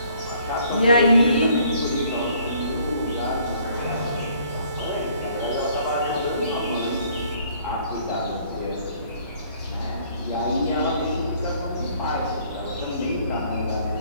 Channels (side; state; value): both; inverted; correlation -0.60